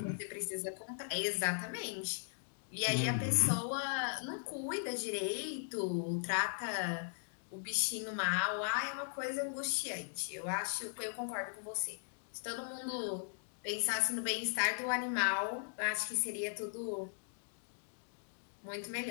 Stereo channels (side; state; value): right; silent; digital silence